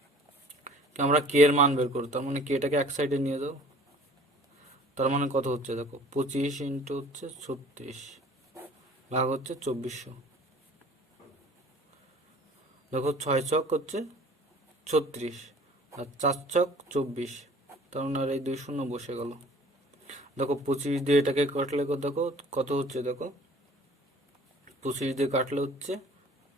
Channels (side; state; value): both; normal; correlation 0.49